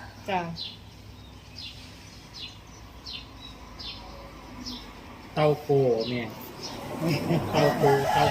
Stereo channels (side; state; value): both; identical; correlation 1.00